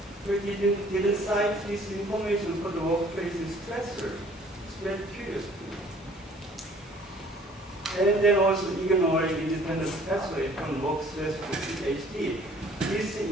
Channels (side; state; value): both; normal; correlation 0.55